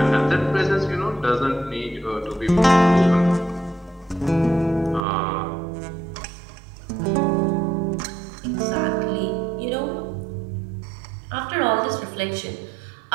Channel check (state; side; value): drops out; left; at 5.0 s